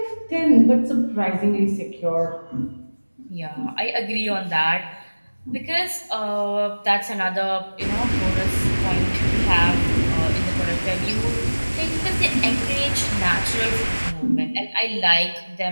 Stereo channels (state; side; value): inverted; both; correlation -1.00